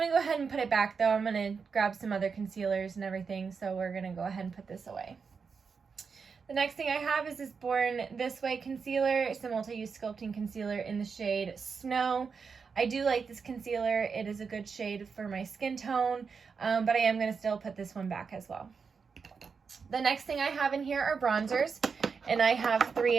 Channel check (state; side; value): quieter; left; 5.5 dB